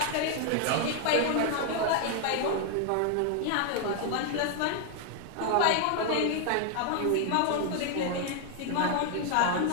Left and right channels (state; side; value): different; both; correlation 0.00